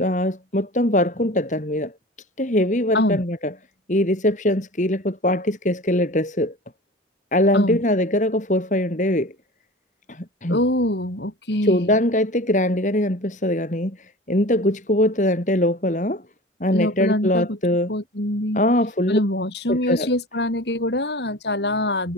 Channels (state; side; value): normal; both; correlation 0.38